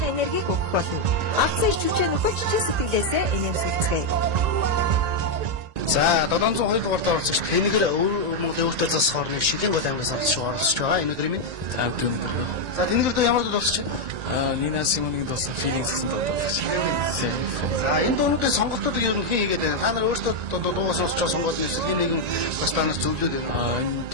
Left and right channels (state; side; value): late; left; 1.9 ms